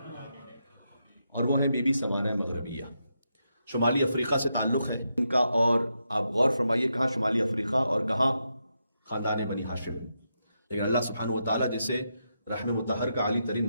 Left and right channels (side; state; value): both; inverted; correlation -0.84